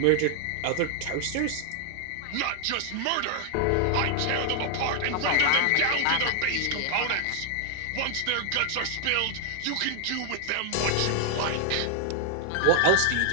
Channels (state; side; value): different; both; correlation 0.00